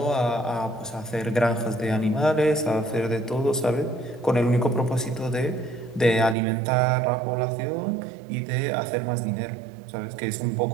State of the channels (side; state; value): left; drops out; at 6.4 s